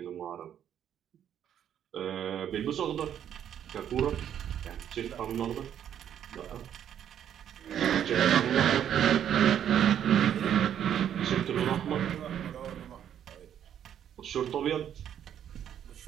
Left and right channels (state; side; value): quieter; left; 9.7 dB